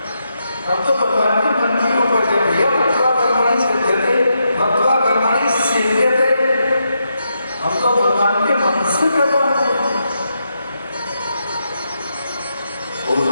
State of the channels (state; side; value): inverted; both; correlation -0.82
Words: हम तो भगवान के मन की ऊपर जब भैया भक्त्वा कर्मणि सिद्ध्यते, भक्त्वा कर्मणि सिद्ध्यते, हम तो भगवान के मन से कर्म करते हैं।